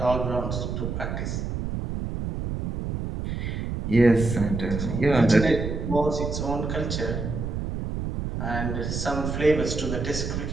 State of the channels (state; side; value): noise; right; rumble, 3 dB below the sound